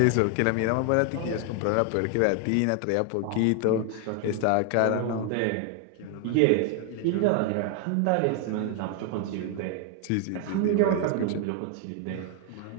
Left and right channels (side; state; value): both; different; correlation 0.00